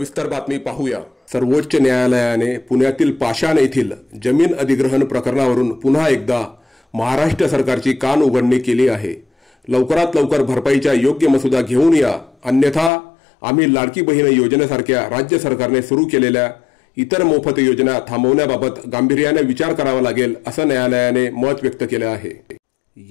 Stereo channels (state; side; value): drops out; right; at 12.9 s